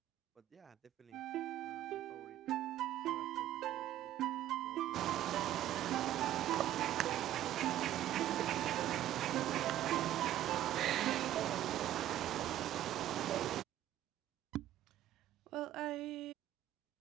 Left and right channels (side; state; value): left; quieter; 12.9 dB